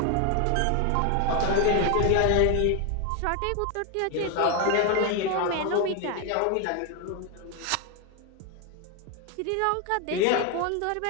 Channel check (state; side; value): different; both; correlation 0.01